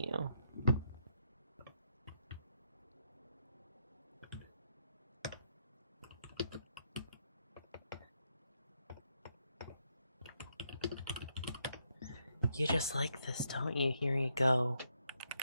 You just like this, don't you? Here you go.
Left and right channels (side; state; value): both; inverted; correlation -0.77